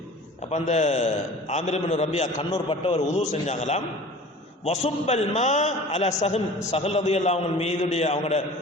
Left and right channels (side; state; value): both; normal; correlation 0.42